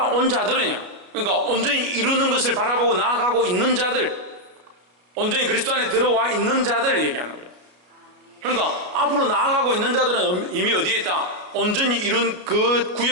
자들은요, 그러니까 온전히 이루는 것을 바라보고 나아가고 있는 자들, 온전히 그리스도 안에 들어와 있는 자들을 얘기하는 거예요. 그러니까 앞으로 나아가고 있는 자들은 이미 어디에 있다? 온전히 이룬 그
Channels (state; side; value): late; left; 33 ms